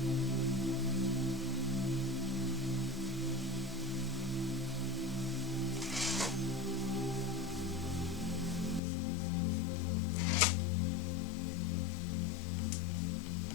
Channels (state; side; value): drops out; right; at 8.8 s